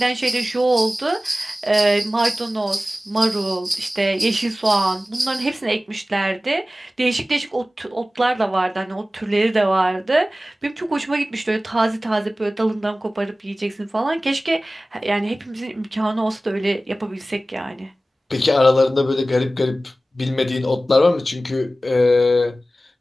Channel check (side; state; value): both; normal; correlation 0.96